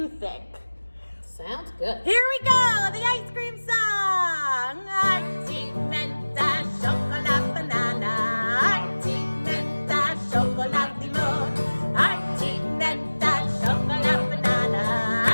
think? Sounds good. Here we go, the ice cream song. Arti menta chocolate banana. Arti menta chocolate limon. Arti menta chocolate banana.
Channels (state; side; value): inverted; both; correlation -1.00